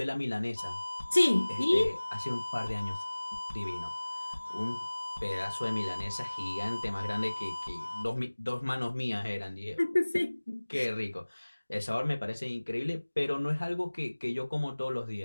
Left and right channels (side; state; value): both; inverted; correlation -1.00